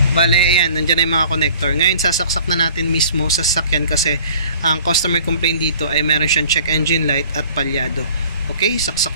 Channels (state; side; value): inverted; both; correlation -0.50